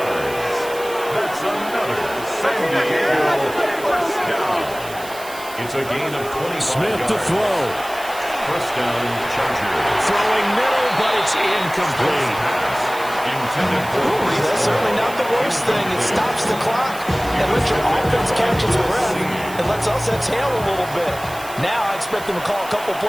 That's another San Diego first down. It's a gain of 20. Smith to throw. First down, Chargers. Throwing middle, but it's incomplete. That's certainly not the worst thing. It stops the clock and lets your offense catch its breath and lets us exhale a little bit. Now I expect them to call a couple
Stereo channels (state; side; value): noise; right; hiss, 16 dB below the sound